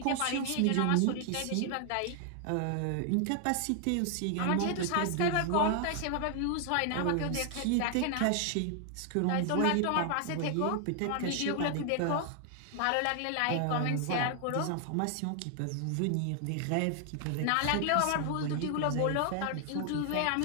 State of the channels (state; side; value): different; both; correlation 0.00